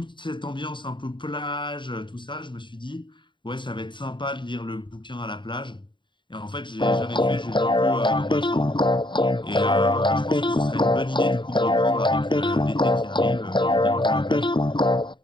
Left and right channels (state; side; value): late; right; 0.23 ms